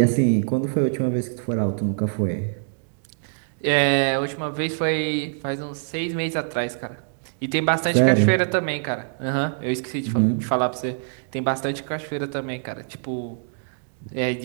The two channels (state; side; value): silent; left; digital silence